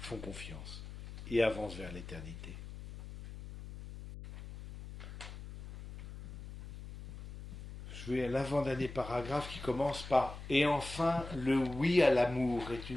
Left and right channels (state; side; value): noise; left; hum, 11 dB below the sound